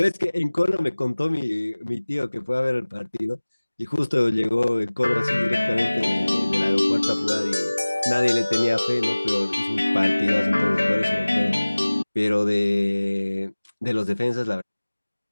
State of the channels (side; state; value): both; inverted; correlation -1.00